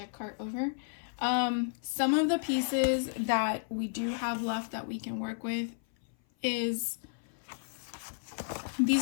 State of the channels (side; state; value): right; silent; 55 dB below the other